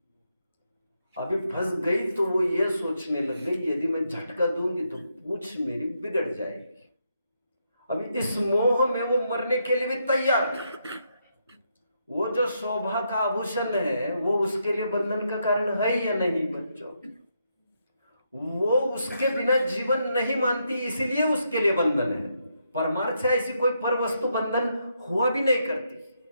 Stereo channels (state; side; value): inverted; both; correlation -0.79